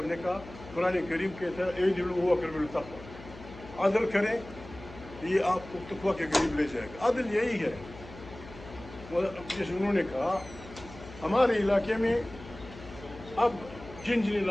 نے کہا، قرآن کریم کہتا ہے اعدلوا هو اقرب للتقویٰ، عدل کریں، یہ آپ کو تقویٰ کے قریب لے جائے گا۔ عدل یہی ہے۔ جیسے انہوں نے کہا ہمارے علاقے میں اب جن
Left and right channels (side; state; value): left; noise; hum, 16 dB below the sound